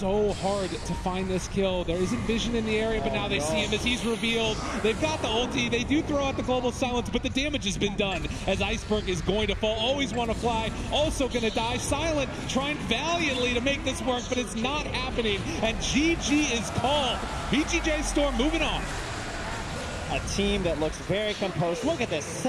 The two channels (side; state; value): both; identical; correlation 1.00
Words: hard to find this kill. There isn't vision in the area, but now they see him as he's revealed. They've got the ulti. They do throw out the Global Silence, but the damage has been done as Iceberg is going to fall. Always want to fly. Also going to die. Silent trying valiantly to make this work, but it's not happening. And GG is called. VGJ Storm moving on. A team that looks very composed. Look at this,